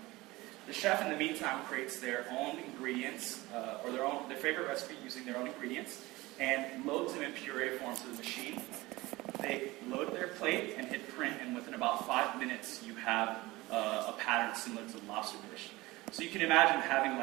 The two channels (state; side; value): quieter; left; 20.3 dB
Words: The chef, in the meantime, creates their own ingredients, or their favorite recipe using their own ingredients, and loads them in puree form to the machine. They load their plate and hit print, and within about 5 minutes, you have a pattern similar to the lobster dish. So you can imagine having